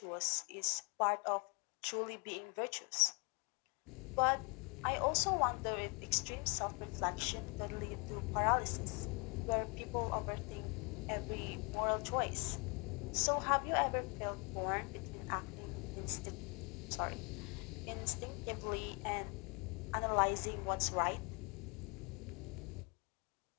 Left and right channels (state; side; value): quieter; right; 32.0 dB